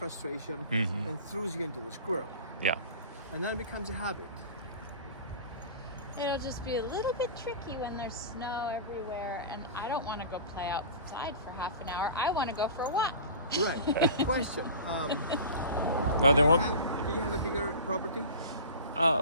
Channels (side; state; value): both; inverted; correlation -0.36